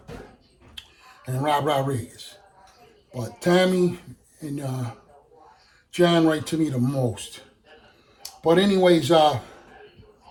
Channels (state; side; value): identical; both; correlation 1.00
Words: and Rob Rodriguez. But Tommy and John write to me the most. But anyways, and